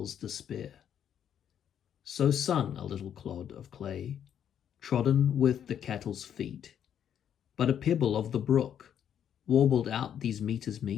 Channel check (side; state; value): right; quieter; 9.2 dB